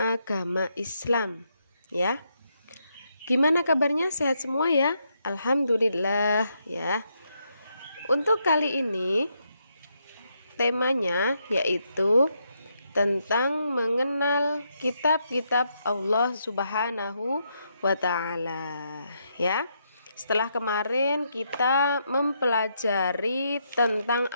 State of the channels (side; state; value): both; inverted; correlation -0.79